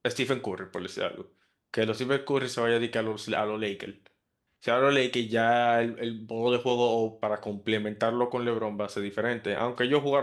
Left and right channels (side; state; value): both; identical; correlation 1.00